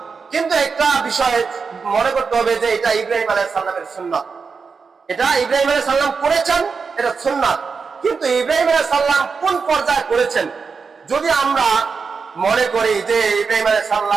কিন্তু একটা বিষয় মনে করতে হবে যে এটা ইব্রাহিম আলাইহিস সালামের সুন্নাত, এটা ইব্রাহিম আলাইহিস সালাম করেছেন, এটা সুন্নাত। কিন্তু ইব্রাহিম আলাইহিস সালাম কোন পর্যায়ে করেছেন, যদি আমরা মনে করি যে ইব্রাহিম আলাইহিস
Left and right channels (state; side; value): quieter; left; 5.2 dB